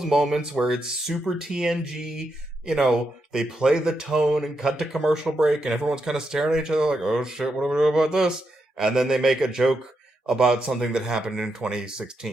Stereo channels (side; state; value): both; normal; correlation 0.83